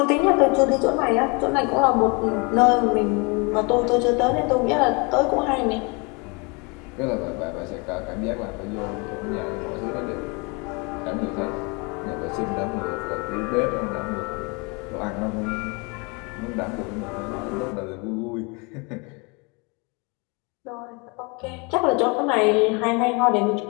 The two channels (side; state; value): right; quieter; 30.2 dB